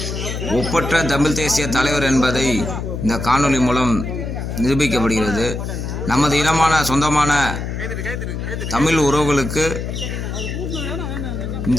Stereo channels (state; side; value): noise; left; hum, 5 dB below the sound